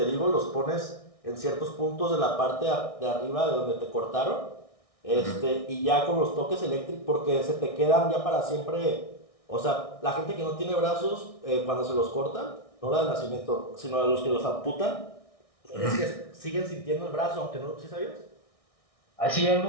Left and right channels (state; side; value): late; right; 1.6 ms